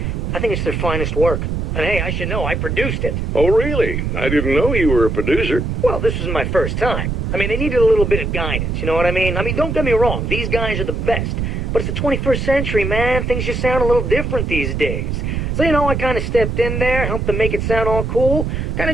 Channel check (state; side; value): noise; right; rumble, 1 dB below the sound